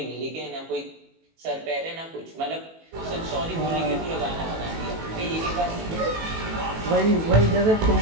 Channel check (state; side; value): late; left; 18 ms